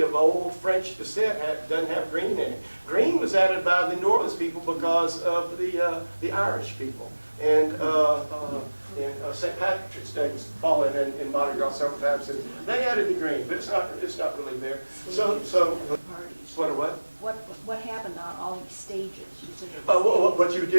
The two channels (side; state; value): both; inverted; correlation -1.00